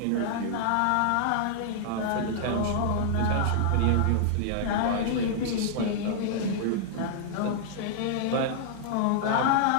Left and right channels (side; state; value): both; different; correlation -0.01